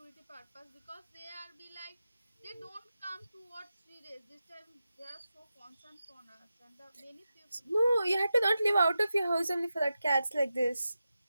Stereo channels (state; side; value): inverted; both; correlation -0.91